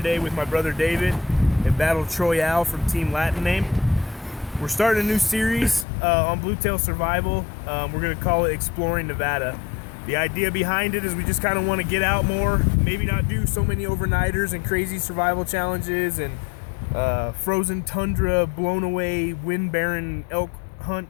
with my brother David and Battle Troyale from Team Latin Name. We're starting a new series on Bluetail Survival. We're going to call it Exploring Nevada. The idea behind it is we just kind of want to get out more, maybe not do so many overnighters and crazy survival challenges and frozen tundra, blown away, wind barren elk hunt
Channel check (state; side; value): drops out; right; at 5.9 s